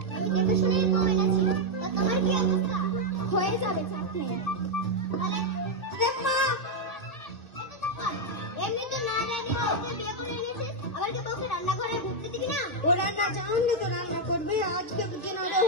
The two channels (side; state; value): right; late; 2.3 ms